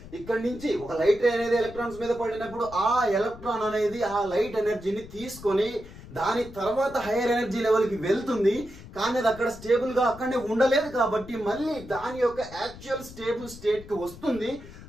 ఇక్కడ నుంచి ఒక లైట్ రే అనేది ఎలక్ట్రాన్స్ మీద పడినప్పుడు ఆ ఎలక్ట్రాన్ అనేది ఆ లైట్ ఎనర్జీని తీసుకొని దాని తర్వాత హైయర్ ఎనర్జీ లెవెల్కి వెళ్తుంది. కానీ అది అక్కడ స్టేబుల్ గా అక్కడనే ఉండలేదు కాబట్టి మళ్ళీ దాని యొక్క యాక్చువల్ స్టేబుల్ స్టేట్ కి వస్తుంది.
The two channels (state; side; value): noise; left; rumble, 17 dB below the sound